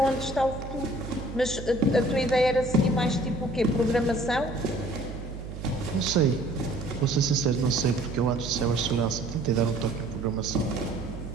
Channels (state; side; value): noise; right; hum, 10 dB below the sound